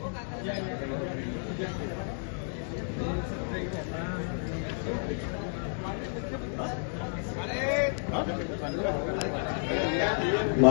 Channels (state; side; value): silent; right; digital silence